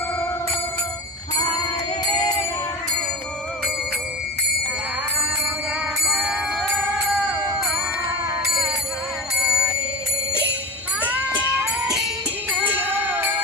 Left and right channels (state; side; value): normal; both; correlation 0.28